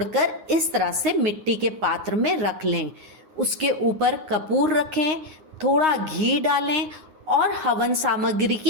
इस तरह से मिट्टी के पात्र में रख लें। उसके ऊपर कपूर रखें, थोड़ा घी डालें और हवन सामग्री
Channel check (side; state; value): left; late; 9.7 ms